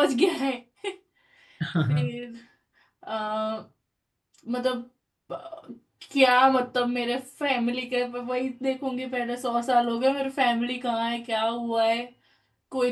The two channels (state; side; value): identical; both; correlation 1.00